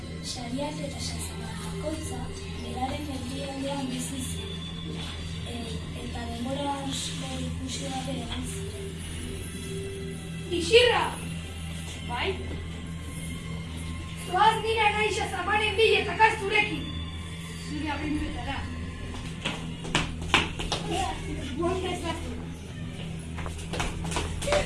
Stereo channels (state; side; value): identical; both; correlation 1.00